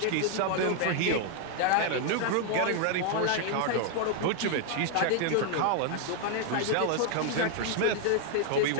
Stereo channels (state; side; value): different; both; correlation 0.00